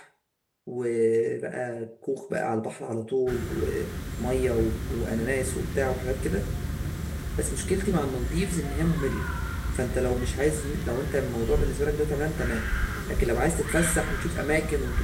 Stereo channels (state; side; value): identical; both; correlation 1.00